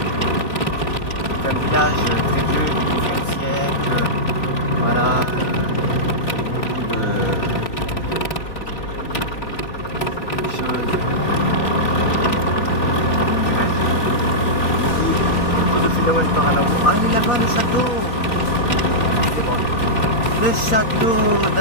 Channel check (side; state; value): right; late; 4.2 ms